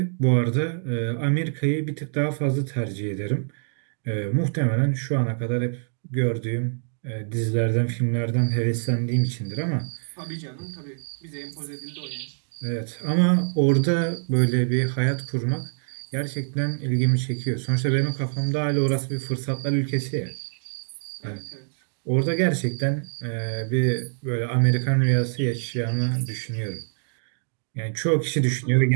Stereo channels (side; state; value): left; silent; digital silence